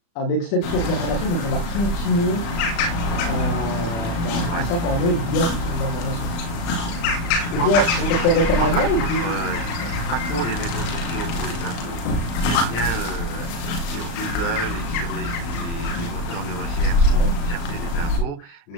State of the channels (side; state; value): right; late; 35 ms